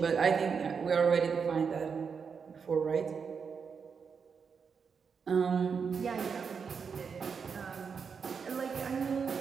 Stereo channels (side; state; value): left; quieter; 6.0 dB